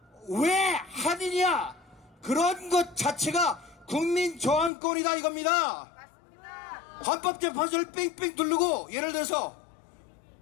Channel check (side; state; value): right; drops out; at 4.7 s